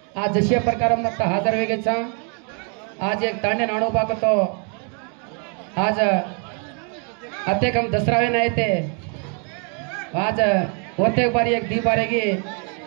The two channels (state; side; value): quieter; left; 38.6 dB